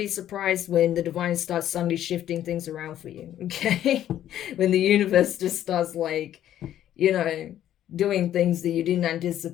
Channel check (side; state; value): right; quieter; 11.6 dB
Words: surprised when the divine starts suddenly shifting things around for you, okay? When the universe just starts, like, you know, doing things that you didn't